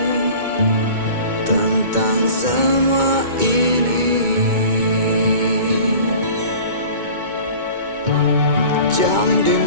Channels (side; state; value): left; late; 2.2 ms